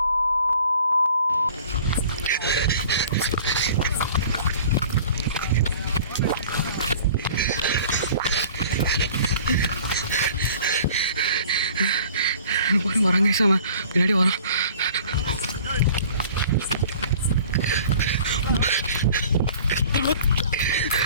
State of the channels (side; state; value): both; inverted; correlation -0.48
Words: வராங்க சாம பின்னாடி வரான்.